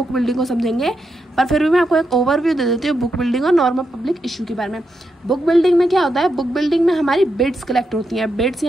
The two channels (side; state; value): both; normal; correlation 0.84